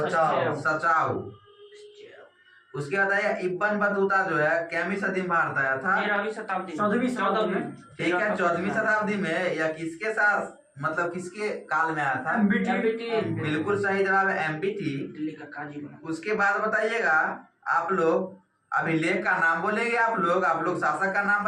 सचाउ। उसके बाद आया इब्न बतूता जो है कितवीं सदी में भारत आया था? 13वीं शताब्दी में। ठीक है, 14वीं शताब्दी में। या किसके साथ, मतलब किसके काल में आया था? बिल्कुल सही जवाब है एमपीटी। दिल्ली का काजी बना। उसके बाद बताइएगा आप लोग अभिलेख का नाम बोलेंगे, आप लोग शासक का नाम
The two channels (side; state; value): both; identical; correlation 1.00